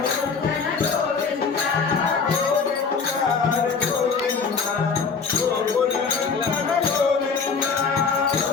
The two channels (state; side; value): quieter; right; 5.3 dB